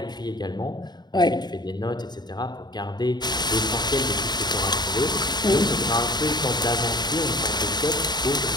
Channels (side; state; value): right; late; 0.20 ms